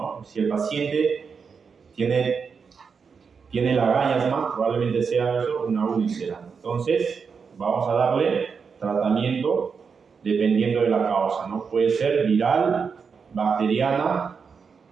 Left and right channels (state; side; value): quieter; left; 5.8 dB